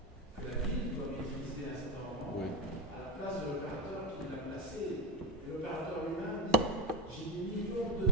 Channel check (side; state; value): both; normal; correlation 0.07